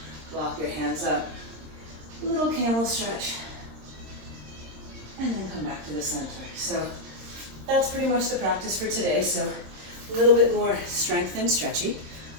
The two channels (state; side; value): late; left; 26 ms